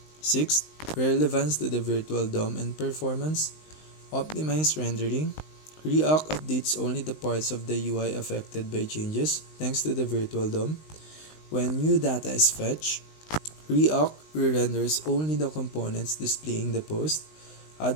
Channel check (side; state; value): right; late; 19 ms